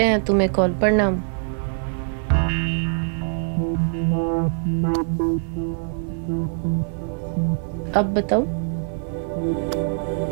हैं तुम्हें कॉल। प्रणाम। अब बताओ,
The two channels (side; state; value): left; silent; digital silence